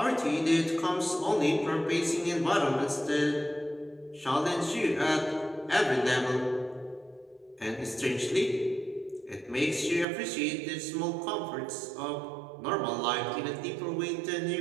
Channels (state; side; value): drops out; left; at 10.1 s